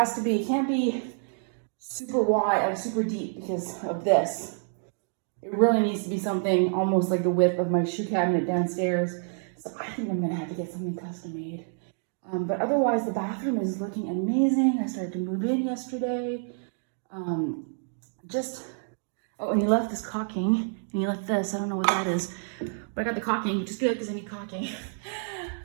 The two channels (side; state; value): left; silent; 59 dB below the other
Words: to be, it can't be super wide or super deep because of this. It really needs to be something almost like the width of my shoe cabinet downstairs. So I think I'm gonna have to get something custom made. But otherwise, the bathroom is looking amazing. I started to move in yesterday. Just, oh, and he left this caulking, and he left this, I don't know what that is, but I got the caulking, which is good because I need caulking.